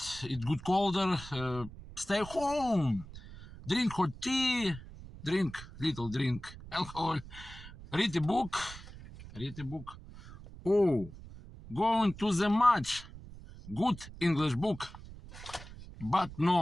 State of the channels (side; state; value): right; noise; rumble, 15 dB below the sound